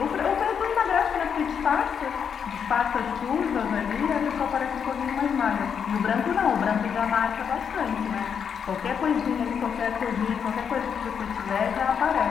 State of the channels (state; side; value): quieter; right; 7.3 dB